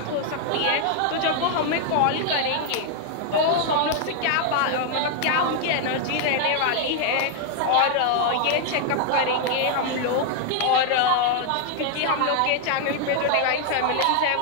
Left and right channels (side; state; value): both; different; correlation 0.00